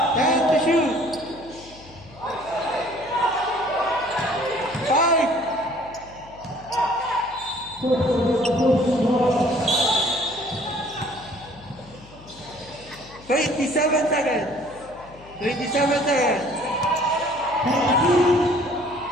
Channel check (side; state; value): left; noise; hum, 21 dB below the sound